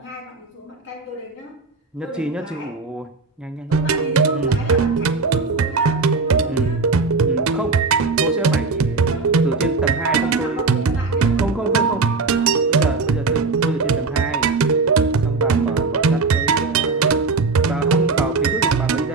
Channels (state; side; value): quieter; left; 4.1 dB